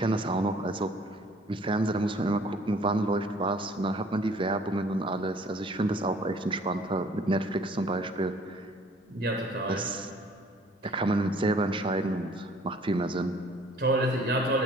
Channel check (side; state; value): both; normal; correlation 0.56